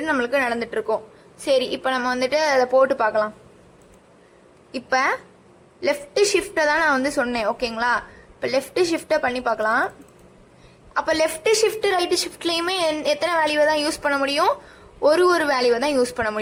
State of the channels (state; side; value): identical; both; correlation 1.00